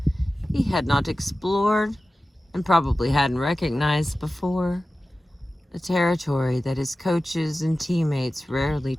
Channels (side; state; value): both; normal; correlation 0.95